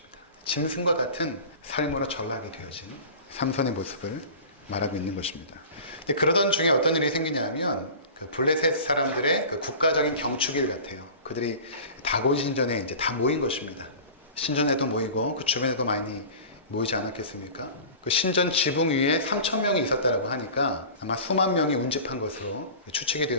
짐승과 같은 삶으로 전락이 되어진 삼손의 모습을 말하고 있는 것입니다. 근데 그러던 중에 어떤 일이 생기냐면 그 블레셋 사람들의 그 국가적인 경축일 같아요. 그들이 다곤 신전에 이제 다 모인 것입니다. 신전에도 모이고 그 주변에도 많이 모이지 않았겠습니까? 그 신전 지붕 위에 3,000명이 있었다고 하니까 아마 수만 명이 운집한 것으로 추측이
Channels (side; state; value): both; inverted; correlation -0.37